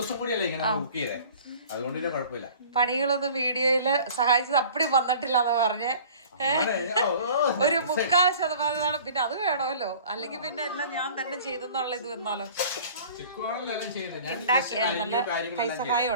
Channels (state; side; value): inverted; both; correlation -0.46